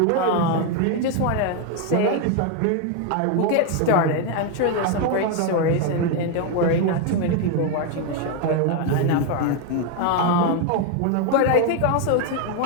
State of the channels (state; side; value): different; both; correlation 0.01